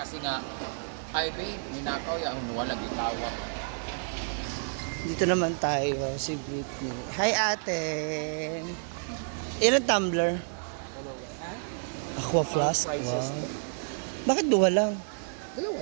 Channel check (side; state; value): left; silent; digital silence